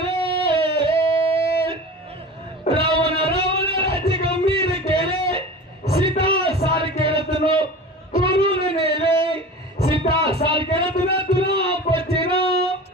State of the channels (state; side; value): normal; both; correlation 0.35